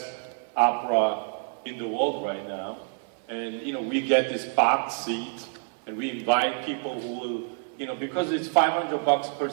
opera in the world right now. And, we get this box seat, and we invite people who will, because it's $500 per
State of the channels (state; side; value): silent; left; 56 dB below the other